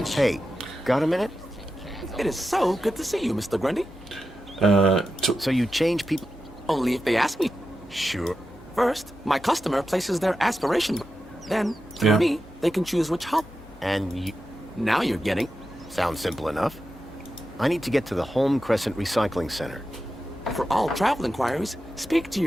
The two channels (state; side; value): normal; both; correlation 0.90